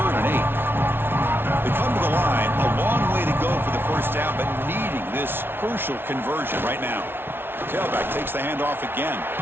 and 8. They come to the line, a long way to go for the first down, but needing this crucial conversion right now. Tailback takes the handoff again.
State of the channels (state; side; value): late; left; 0.11 ms